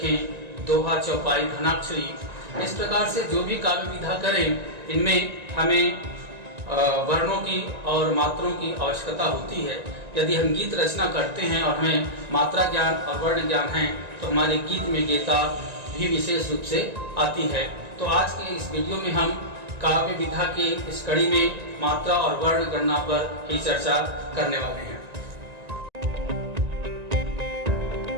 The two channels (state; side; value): late; left; 1.9 ms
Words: दोहा, चौपाई, घनाक्षरी, इस प्रकार से जो भी काव्य विधा करें, इनमें हमें वर्णों की और मात्रों की आवश्यकता होती है। यदि हम गीत रचना करते हैं और हमें मात्रा ज्ञान और वर्ण ज्ञान है, तो हमारे गीत में गीता भी विशेष रूप से आती है। तो आज के इस वीडियो में हम काव्य विधा की इस कड़ी में मात्रा और वर्ण गणना पर ही चर्चा करने वाले हैं।